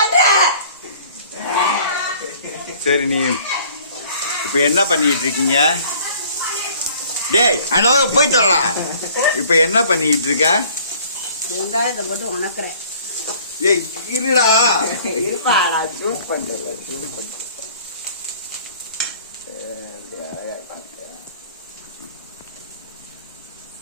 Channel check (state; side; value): inverted; both; correlation -0.53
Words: சரி நீ இப்ப என்ன பண்ணிட்டு இருக்கீங்க? டேய் அந்த போய் சொல்லலாம். இப்ப என்ன பண்ணிட்டு இருக்க? வெங்காயத்தை போட்டு உணக்குறேன். ஏய் இருடா, இருப்பாடா, ஜூஸ் பண்றேன்.